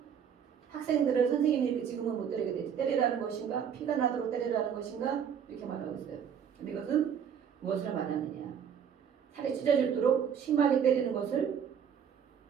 학생들을 선생님이 이렇게 지금은 못 때리게 되지. 때리라는 것인가? 피가 나도록 때리라는 것인가? 이렇게 말하고 있어요. 근데 이것은 무엇을 말하느냐? 살이 찢어질도록 심하게 때리는 것을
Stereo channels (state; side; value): quieter; left; 7.9 dB